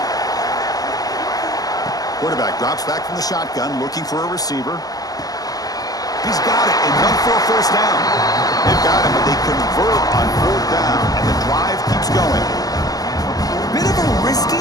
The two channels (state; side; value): late; right; 0.18 ms